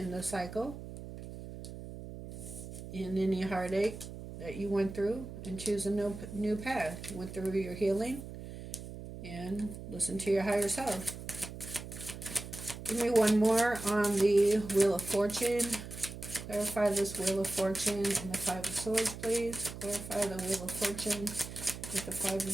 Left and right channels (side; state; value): right; noise; hum, 11 dB below the sound